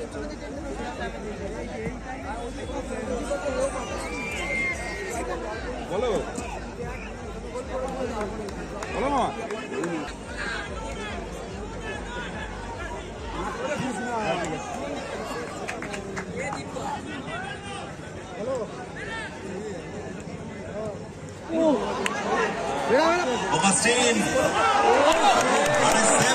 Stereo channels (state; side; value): identical; both; correlation 1.00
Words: বলো বলো মা Augustine